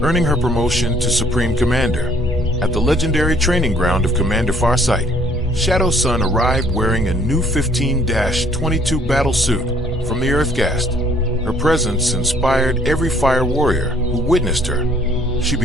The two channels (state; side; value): normal; both; correlation 0.60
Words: earning her promotion to Supreme Commander. At the legendary training ground of Commander Farsight, Shadowsun arrived wearing a new 15-22 battle suit from the Earthgast. Her presence inspired every fire warrior who witnessed her. She